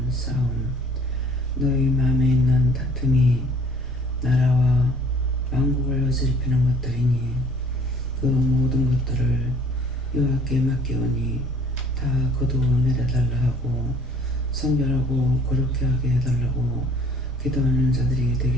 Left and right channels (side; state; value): both; normal; correlation 0.55